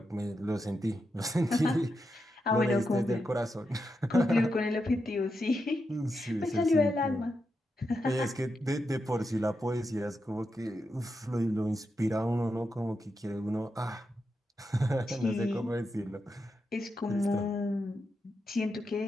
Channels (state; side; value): normal; both; correlation 0.86